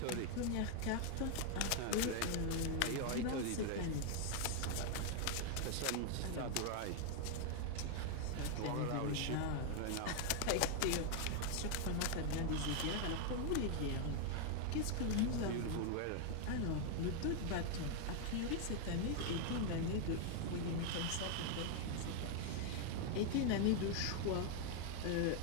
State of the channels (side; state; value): both; different; correlation 0.00